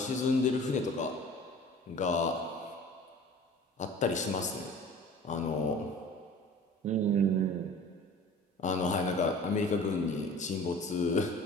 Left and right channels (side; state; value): both; normal; correlation 0.43